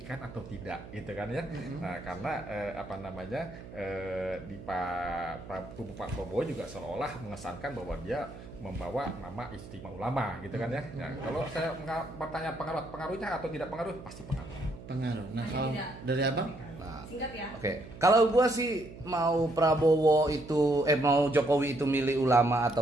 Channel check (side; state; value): right; noise; hum, 15 dB below the sound